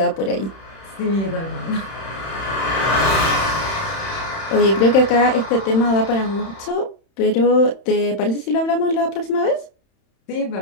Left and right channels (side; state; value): right; late; 31 ms